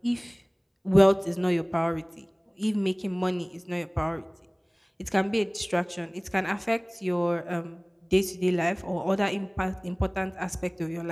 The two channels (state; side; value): identical; both; correlation 1.00